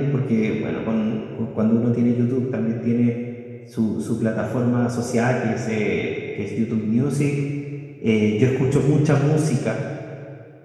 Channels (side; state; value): both; identical; correlation 1.00